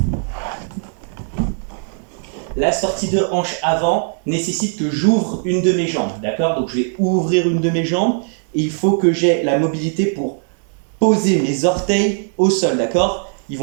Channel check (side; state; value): left; silent; digital silence